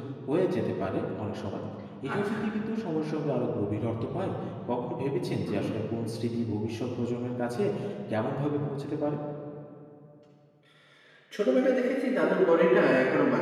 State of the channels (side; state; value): both; identical; correlation 1.00